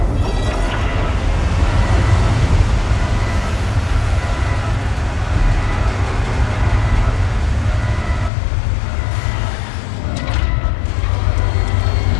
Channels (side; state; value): right; drops out; at 8.3 s